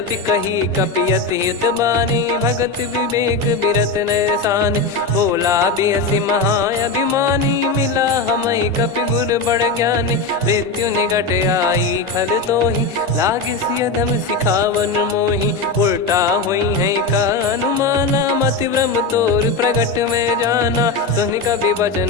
कही कपियति हित बानी, भगत विवेक बिरत नैसान। बोला बिहसि महाअभिमानी, मिला हमई कपि गुर बड़ ज्ञानी। मृत्यु निकट आई खल तोहि, लागिसि अधम सिखावन मोहि। उल्टा हुई है का अनुमाना, मति भ्रम तोर प्रगट में जाना। सुनि कपि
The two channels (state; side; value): quieter; right; 3.8 dB